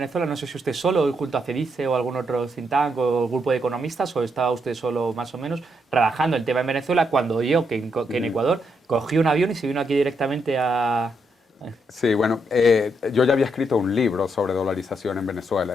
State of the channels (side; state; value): both; normal; correlation 0.78